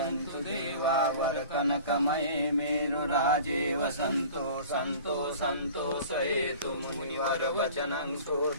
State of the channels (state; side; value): inverted; both; correlation -0.42